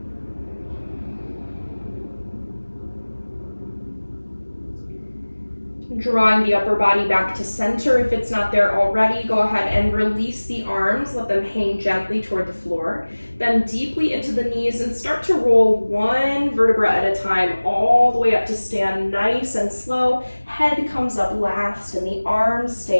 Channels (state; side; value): inverted; both; correlation -1.00